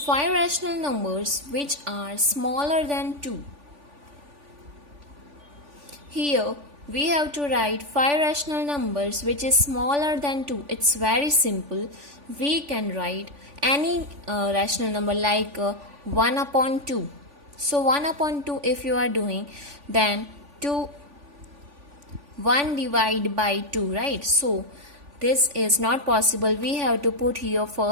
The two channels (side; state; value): left; late; 3.5 ms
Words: 5 rational numbers which are smaller than 2. Here we have to write 5 rational numbers which is smaller than 2. It's very simple. We can write any rational number like 1 upon 2. So 1 upon 2 if you are doing, then 1 divided by 2, right? So this is not possible. We have to put here